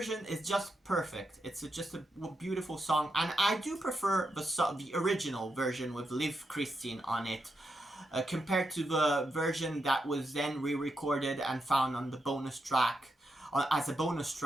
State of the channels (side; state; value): both; normal; correlation 0.85